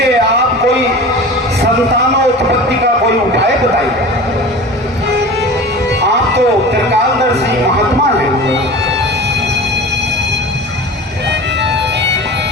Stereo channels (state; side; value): normal; both; correlation 0.36